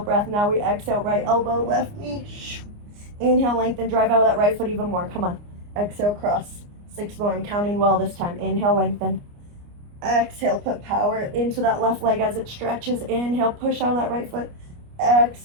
Now we exhale, right elbow, left knee. Inhale, lengthen, drive out of that right foot even more. Come on. Exhale, cross. 6 more. I'm counting well this time. Inhale, lengthen. Exhale, put power into that left leg as it stretches. Inhale, push out of that right foot.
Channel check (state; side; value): late; left; 29 ms